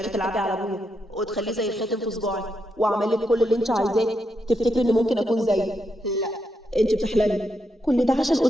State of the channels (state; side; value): normal; both; correlation 0.82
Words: تلعبي على ابويا وتخليه زي الخاتم في صباعي واعمل لك كل اللي انت عايزاه تفتكري اني ممكن اكون زيي؟ لا انت بتحلمي. كل ده عشان